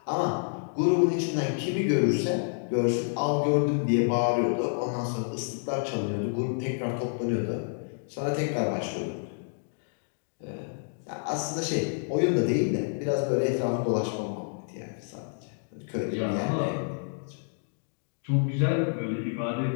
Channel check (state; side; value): silent; right; digital silence